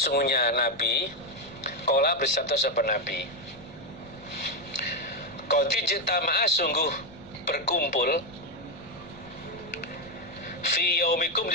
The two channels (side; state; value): left; noise; rumble, 24 dB below the sound